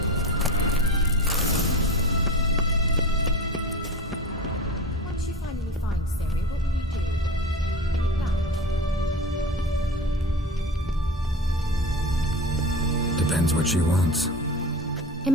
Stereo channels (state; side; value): normal; both; correlation 0.30